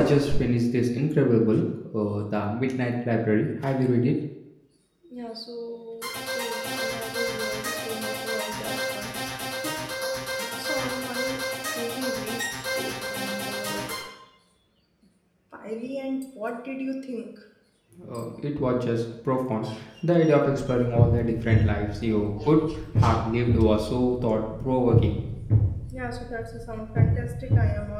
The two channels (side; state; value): both; identical; correlation 1.00